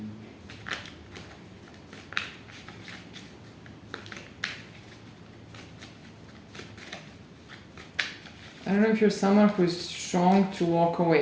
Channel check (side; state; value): both; identical; correlation 1.00